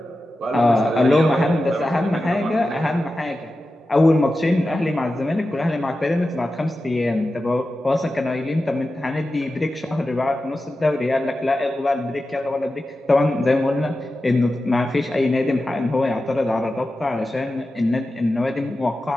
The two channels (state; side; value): normal; both; correlation 0.92